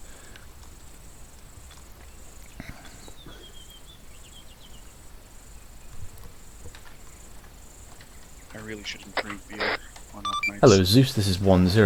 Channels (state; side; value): identical; both; correlation 1.00